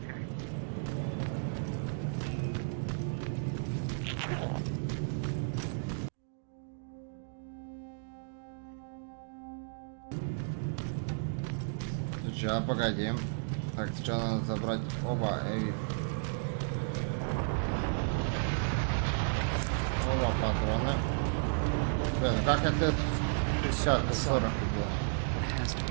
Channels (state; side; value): silent; left; digital silence